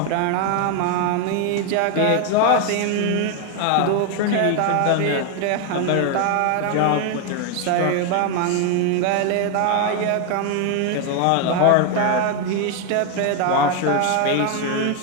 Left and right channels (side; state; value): both; different; correlation 0.01